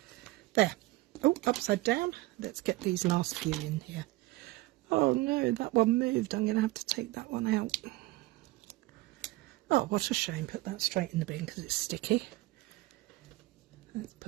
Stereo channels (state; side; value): quieter; left; 19.8 dB